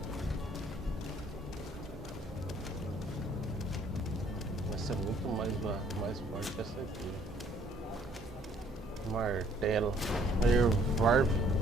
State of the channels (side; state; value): both; normal; correlation 0.61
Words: Vai ser muito mais forte que essa aqui. Martelo.